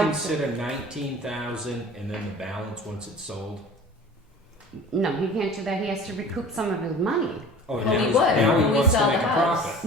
consider 19,000 and then the balance once it's sold? No, he can't do that. He has to recoup some of his money. Oh, Well, now we he's- would, now he when we wants to sell make the a house.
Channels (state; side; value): normal; both; correlation 0.42